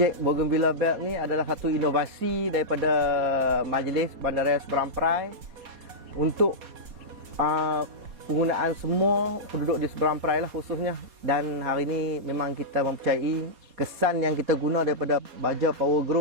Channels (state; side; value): late; left; 4.2 ms